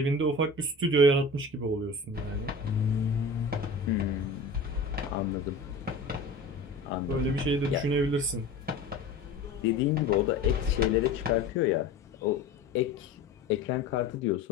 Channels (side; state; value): right; quieter; 3.2 dB